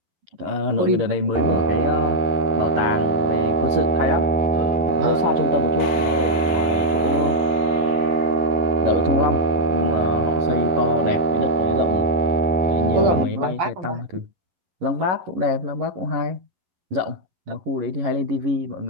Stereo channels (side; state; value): left; late; 11 ms